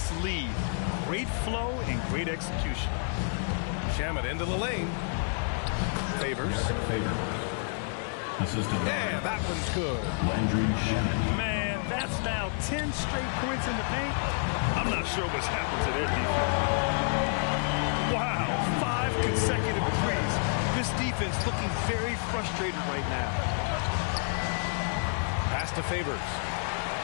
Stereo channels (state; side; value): silent; right; 58 dB below the other